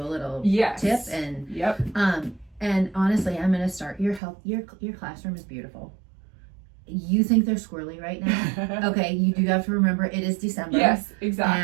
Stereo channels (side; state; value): left; drops out; at 4.2 s